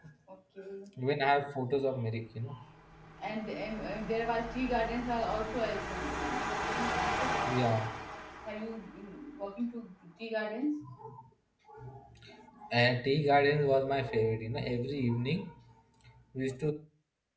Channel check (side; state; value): both; identical; correlation 1.00